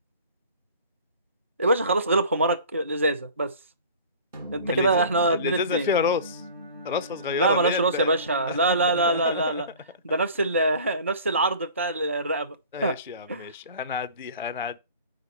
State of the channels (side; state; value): both; inverted; correlation -0.43